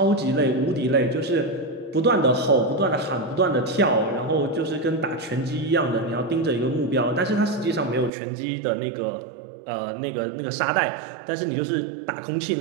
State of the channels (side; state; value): left; drops out; at 8.1 s